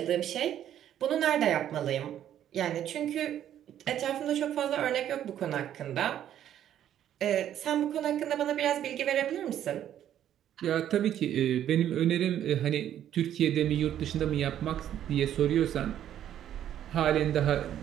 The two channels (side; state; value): left; quieter; 10.8 dB